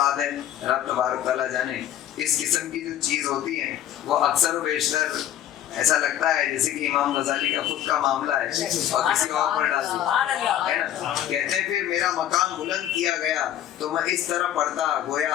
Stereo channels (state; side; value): quieter; right; 11.5 dB